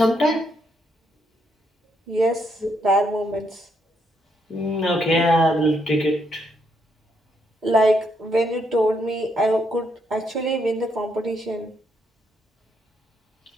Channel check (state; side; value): normal; both; correlation 0.76